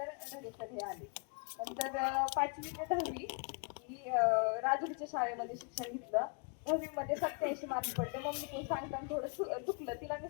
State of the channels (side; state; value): right; quieter; 34.3 dB